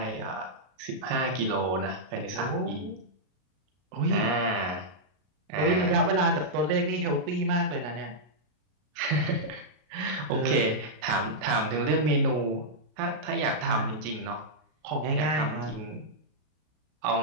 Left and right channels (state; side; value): late; left; 33 ms